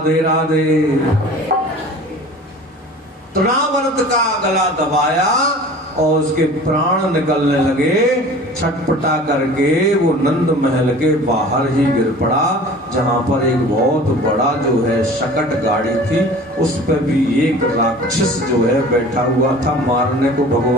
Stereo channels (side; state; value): both; normal; correlation 0.43